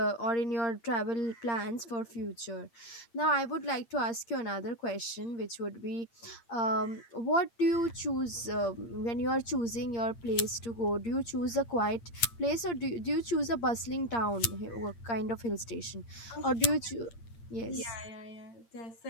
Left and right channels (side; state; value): right; late; 8.7 ms